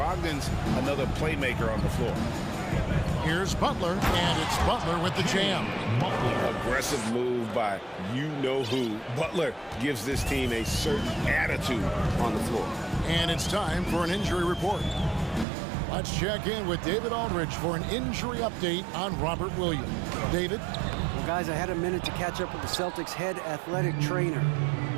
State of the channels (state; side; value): drops out; left; at 15.5 s